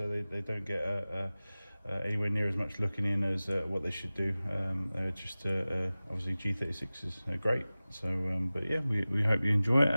they don't get anywhere near as much looking in as what they should do. Obviously G36 is great. So, but yeah, we hope you enjoy it.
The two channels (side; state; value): both; inverted; correlation -0.97